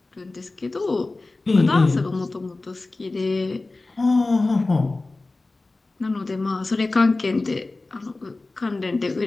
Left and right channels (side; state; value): right; quieter; 3.2 dB